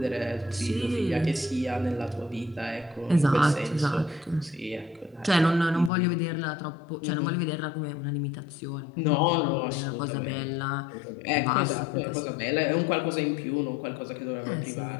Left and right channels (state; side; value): drops out; right; at 5.9 s